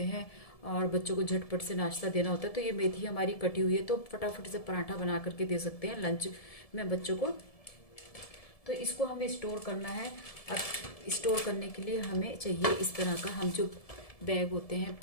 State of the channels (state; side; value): late; right; 1.7 ms